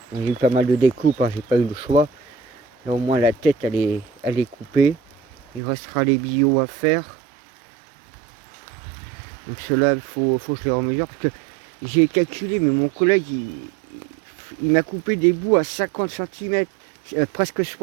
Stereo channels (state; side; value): drops out; left; at 5.6 s